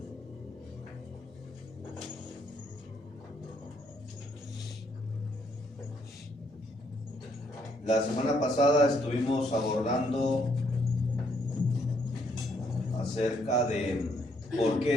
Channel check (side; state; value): both; normal; correlation 0.71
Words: estuvimos abordando acerca de por